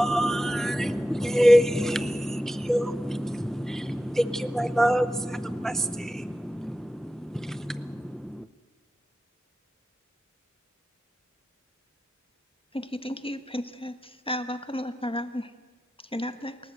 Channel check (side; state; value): both; normal; correlation 0.93